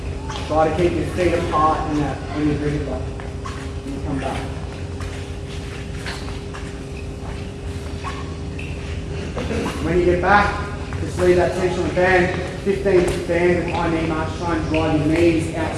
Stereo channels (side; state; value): both; identical; correlation 1.00